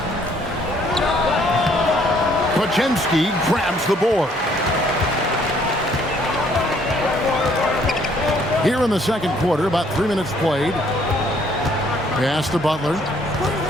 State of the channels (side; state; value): both; normal; correlation 0.64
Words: Podziemski grabs the board. Here in the second quarter, about 3 minutes played. Pass to Butler.